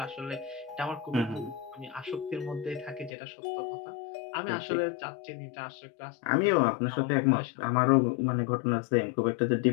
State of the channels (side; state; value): right; drops out; at 3.1 s